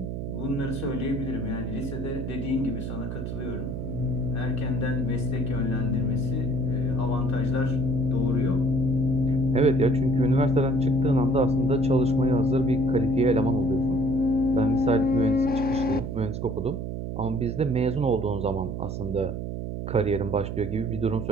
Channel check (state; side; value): noise; right; hum, 5 dB below the sound